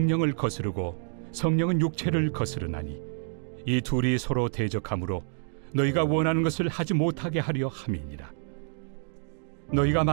거스르고 성령은 육체를 거스르나니 이 둘이 서로 대적하므로 너희가 원하는 것을 하지 못하게 하려 함이니라. 너희가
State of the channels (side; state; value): left; silent; 55 dB below the other